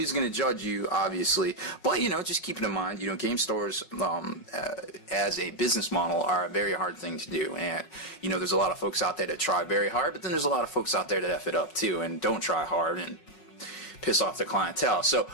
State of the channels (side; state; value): right; late; 5.4 ms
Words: going to judge you, obviously, but, you know, just keep it in mind, you know, game stores as a business model are a very hard thing to do. And, you know, there's a lot of folks out there that try very hard, but then there's a lot of folks out there that F it up too and don't try hard and piss off their clientele. So